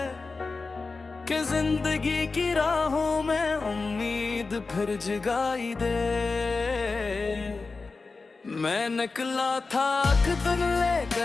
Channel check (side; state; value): right; quieter; 4.0 dB